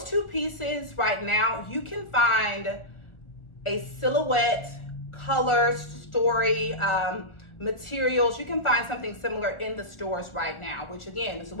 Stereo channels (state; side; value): late; right; 1.4 ms